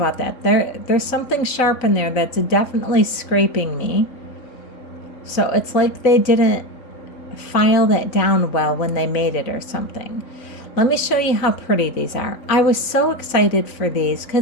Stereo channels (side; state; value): right; late; 4.0 ms